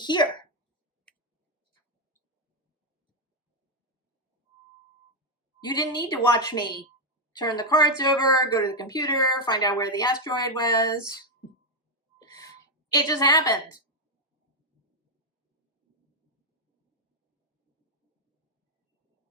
You didn't need to watch me turn the cards over, go to the computer, find out where the asteroid was. It just happened.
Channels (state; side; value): normal; both; correlation 0.02